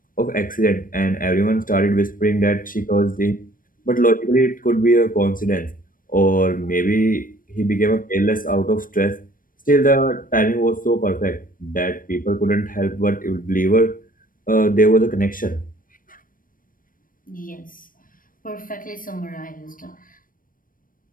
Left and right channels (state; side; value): late; right; 0.40 ms